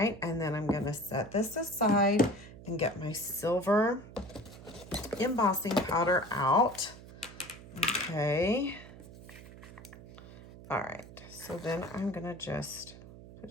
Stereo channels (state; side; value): noise; right; hum, 17 dB below the sound